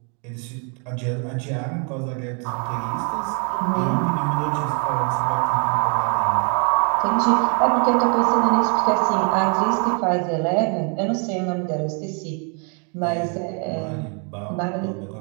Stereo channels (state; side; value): quieter; left; 38.2 dB